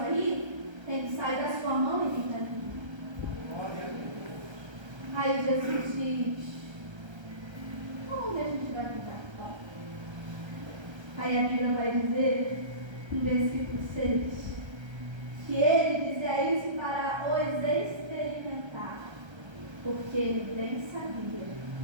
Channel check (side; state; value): left; late; 1.3 ms